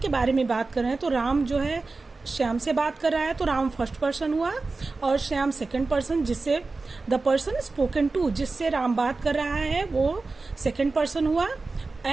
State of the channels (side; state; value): left; quieter; 3.8 dB